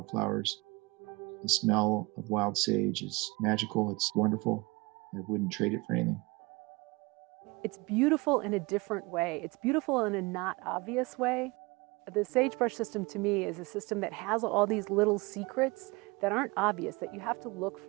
The smell of wild sage is magical. It's wonderful. I wouldn't trade it for anything. It's beautiful in a different way. It's beautiful in a not obvious way. The sagebrush system to me is a system that has all these little secrets that aren't obvious, that you have to look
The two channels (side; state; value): left; quieter; 25.6 dB